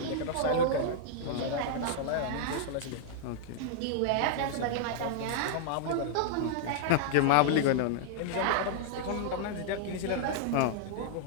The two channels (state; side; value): different; both; correlation -0.01